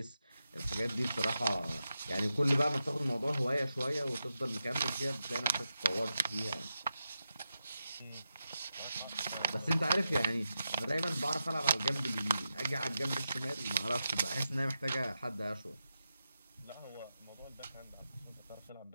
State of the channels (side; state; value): both; inverted; correlation -0.89